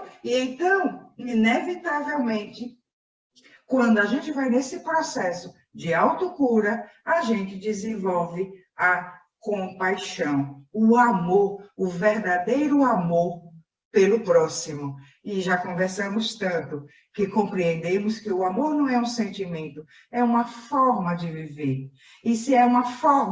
E então, inevitavelmente, quando a gente vai nesse processo de autocura, a gente desenvolve a compaixão. o amor, o verdadeiro amor pelo próximo. E já conversamos tanto que compreendemos que o amor não é um sentimento, é uma forma de viver. E se é uma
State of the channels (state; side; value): identical; both; correlation 1.00